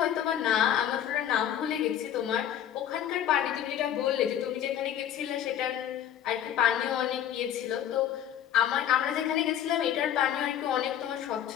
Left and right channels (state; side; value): quieter; right; 10.4 dB